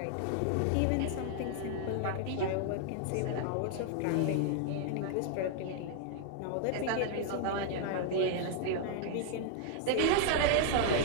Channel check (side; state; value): both; different; correlation 0.00